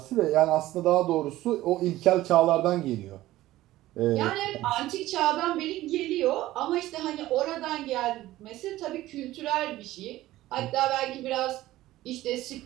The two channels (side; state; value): left; quieter; 15.9 dB